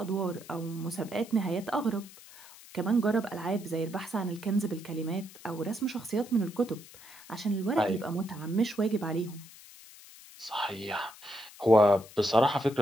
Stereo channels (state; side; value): noise; left; hiss, 19 dB below the sound